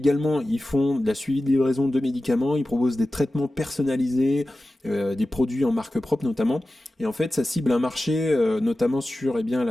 ils font de la suivi de livraison de médicaments, ils proposent des traitements personnalisés, des produits en marque propre notamment. Et en fait, ça cible un marché notamment sur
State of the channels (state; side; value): normal; both; correlation 0.95